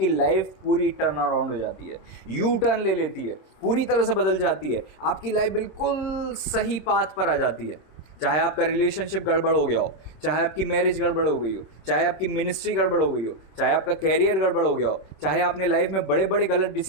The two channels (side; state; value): right; late; 26 ms